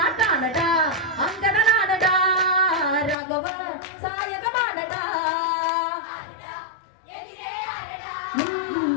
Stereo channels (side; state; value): right; drops out; at 3.2 s